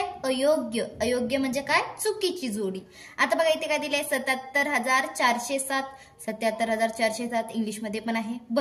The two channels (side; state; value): both; identical; correlation 1.00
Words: अयोग्य। अयोग्य म्हणजे काय, चुकीची जोडी। आता बघा इथे काय दिलंय, 77,407, 77,407 इंग्लिश मध्ये पण आहे,